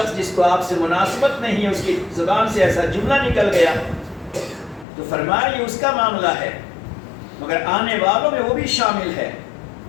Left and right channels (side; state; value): right; drops out; at 4.9 s